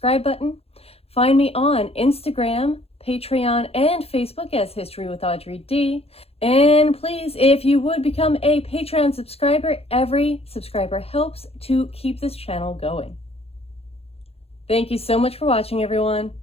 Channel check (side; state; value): right; late; 0.29 ms